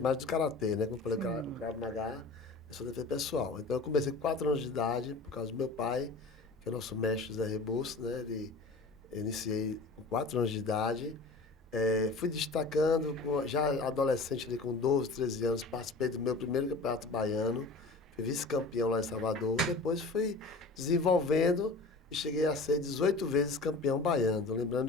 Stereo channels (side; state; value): right; quieter; 3.5 dB